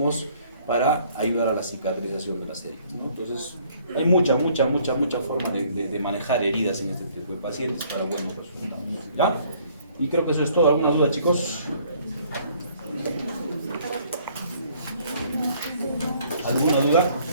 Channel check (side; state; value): both; inverted; correlation -0.60